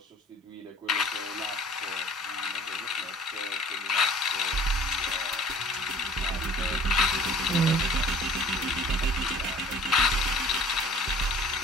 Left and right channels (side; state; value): both; normal; correlation 0.49